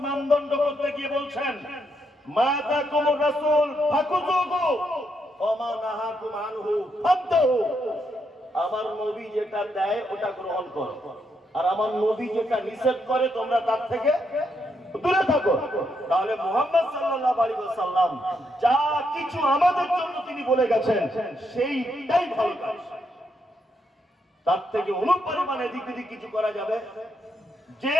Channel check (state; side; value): normal; both; correlation 0.79